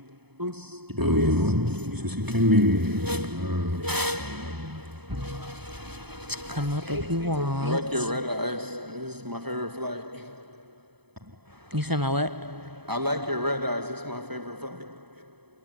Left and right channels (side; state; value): left; late; 0.98 ms